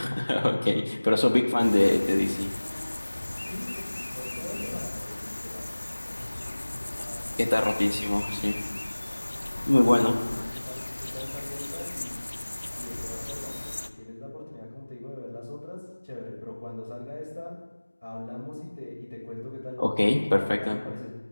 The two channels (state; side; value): inverted; both; correlation -1.00